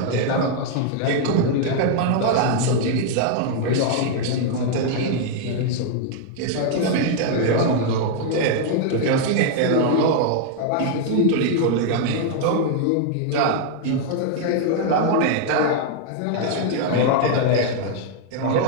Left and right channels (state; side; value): different; both; correlation 0.00